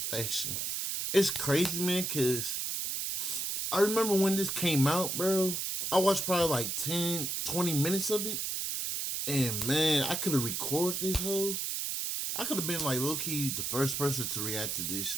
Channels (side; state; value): right; noise; hiss, 1 dB below the sound